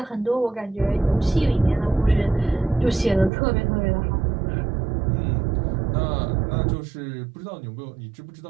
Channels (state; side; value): drops out; left; at 3.3 s